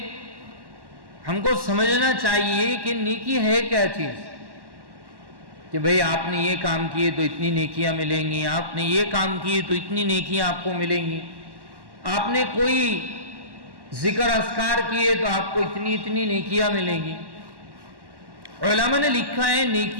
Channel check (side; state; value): left; late; 1.1 ms